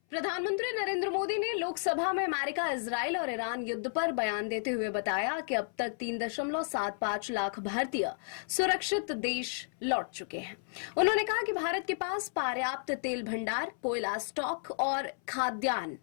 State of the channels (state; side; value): silent; right; 56 dB below the other